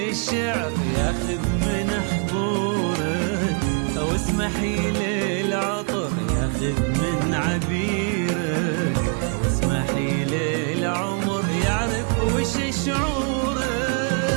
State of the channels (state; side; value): quieter; left; 38.6 dB